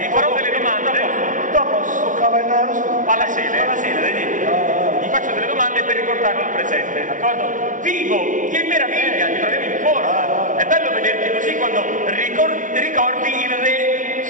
farò delle domande. Dopo sto cavallaro. Pallasele, gli faccio delle domande per riportarlo al presente, d'accordo? Vivo, che meraviglia, ti troviamo in forma. È bello vederti così quando ricordi il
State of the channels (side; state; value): left; late; 0.38 ms